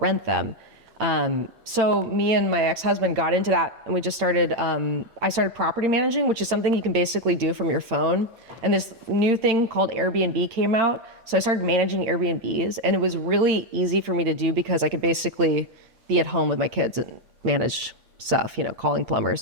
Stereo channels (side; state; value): left; late; 8.6 ms